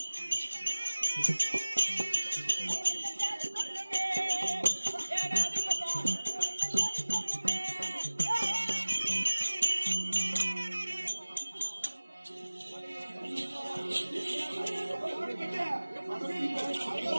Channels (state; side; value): inverted; both; correlation -1.00